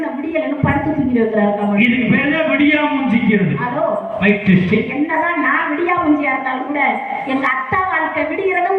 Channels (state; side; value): identical; both; correlation 1.00